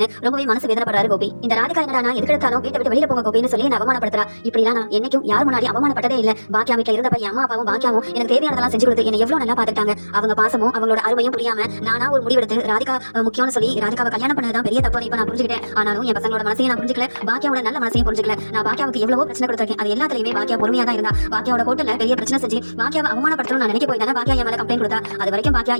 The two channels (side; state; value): both; inverted; correlation -1.00